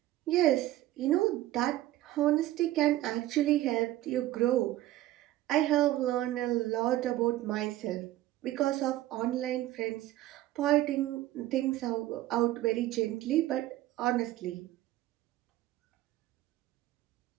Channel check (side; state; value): left; quieter; 15.1 dB